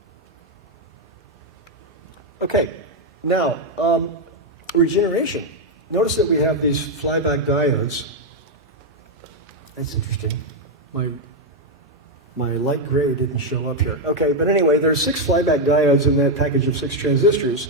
Okay, now, regeneration. Notice that we have these flyback diodes. That's interesting. My light gray didn't show up here. Okay, but anyway, there's 6 flyback diodes in that package of 6 transistors.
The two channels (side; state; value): both; normal; correlation 0.02